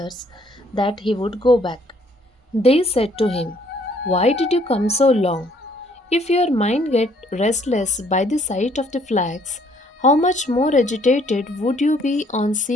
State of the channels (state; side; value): normal; both; correlation 0.64